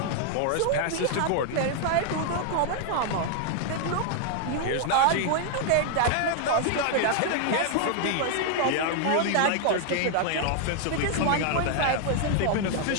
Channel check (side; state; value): both; different; correlation 0.00